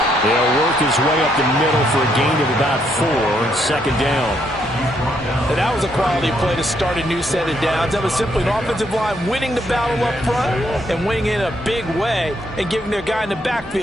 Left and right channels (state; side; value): normal; both; correlation 0.74